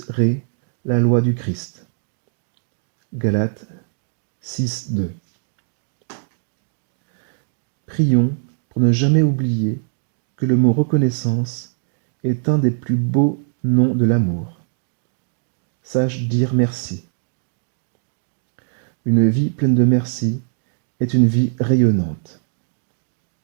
la loi du Christ. Galates 6, 2. Prions pour ne jamais oublier que le mot reconnaissance est un des plus beaux noms de l'amour. Sache dire merci. Une vie pleine de merci est une vie rayonnante.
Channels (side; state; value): left; silent; digital silence